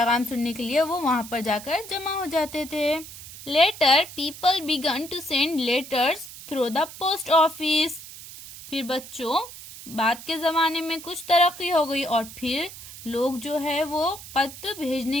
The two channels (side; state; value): right; noise; hiss, 14 dB below the sound